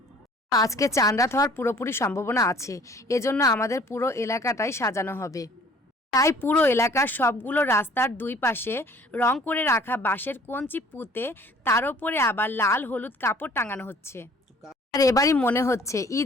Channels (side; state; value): both; normal; correlation 0.54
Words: আজকে চাঁদ রাত হওয়ার পুরোপুরি সম্ভাবনা আছে, এজন্য আমাদের পুরো এলাকাটাই সাজানো হবে। তাই পুরো এলাকার সবগুলো রাস্তার দুই পাশে রং করে রাখা বাঁশের কঞ্চি পুঁতে তার উপরে আবার লাল হলুদ কাপড় টাঙানো হচ্ছে। আর এবারই মনে হচ্ছে